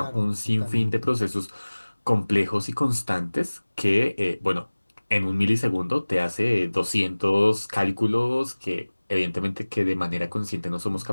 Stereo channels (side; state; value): both; inverted; correlation -1.00